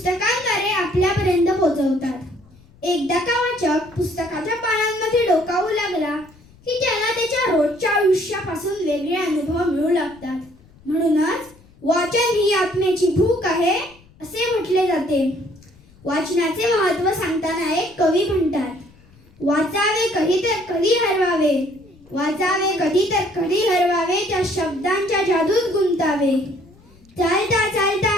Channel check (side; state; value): left; noise; rumble, 27 dB below the sound